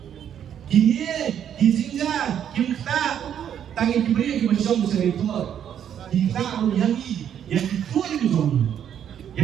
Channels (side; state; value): left; quieter; 9.3 dB